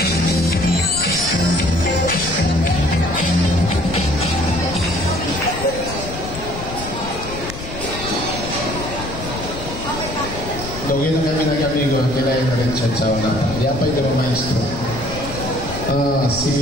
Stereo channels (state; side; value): noise; left; rumble, 10 dB below the sound